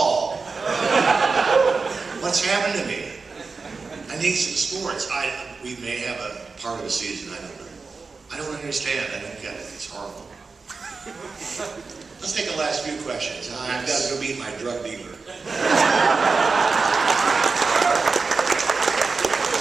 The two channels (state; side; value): quieter; left; 4.4 dB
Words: What's happened to me? I need some sports. We may have a part of a season. I don't know. I don't understand. I don't get it. It's horrible. Let's take the last few questions. I've got to go meet my drug dealer.